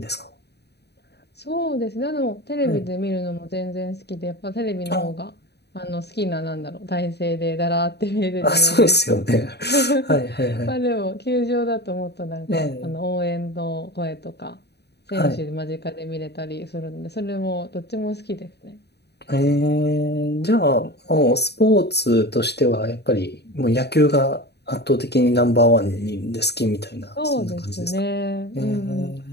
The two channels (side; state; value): right; late; 0.48 ms